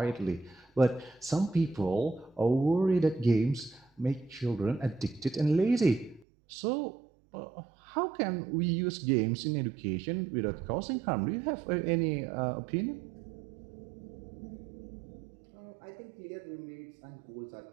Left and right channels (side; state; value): left; drops out; at 6.2 s